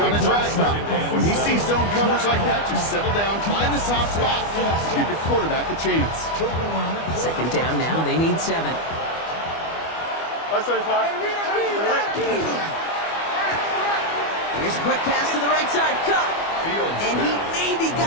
on a drag route. When he sees zone coverage like that, just settle down, find the soft spot, give the quarterback a chance. 2nd down now, they need 7. Here's a quick pass to the right side, cut. And he maybe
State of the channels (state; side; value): late; right; 25 ms